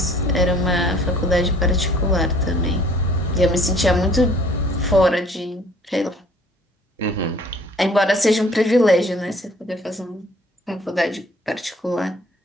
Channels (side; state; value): both; normal; correlation 0.55